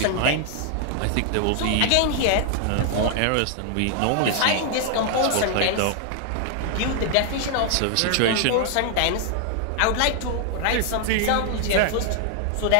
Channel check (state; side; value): different; both; correlation 0.00